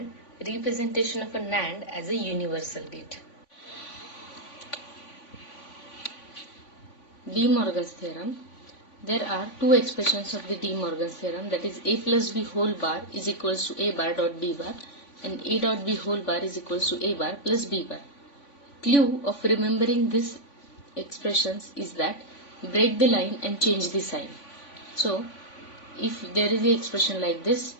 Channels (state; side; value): late; right; 3.5 ms